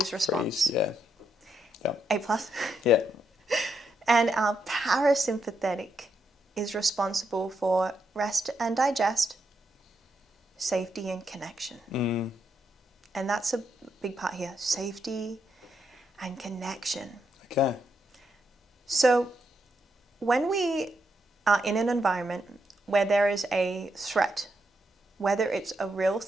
response. Yeah. Yep. A+. Yeah. And our parasympathetic is responsible for rest and digest, safety and connection. And that's a big part here, safety and connection. Okay. So when we are in an environment where there is a threat, whether it's a real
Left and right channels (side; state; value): both; normal; correlation 0.80